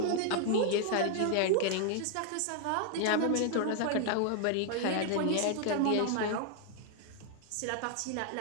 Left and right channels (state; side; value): different; both; correlation 0.00